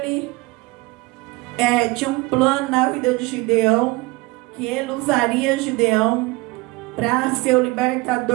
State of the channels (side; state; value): left; quieter; 23.1 dB